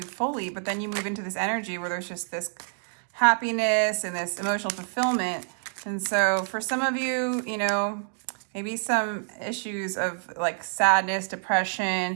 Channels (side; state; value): left; silent; 60 dB below the other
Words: fully. But then you move into this energy where there's just this happiness and this emotional fulfillment. And so for some of you, you know, maybe some issues of like sadness,